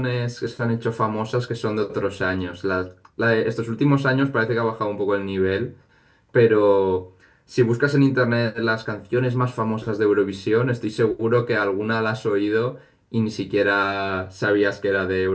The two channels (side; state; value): both; identical; correlation 1.00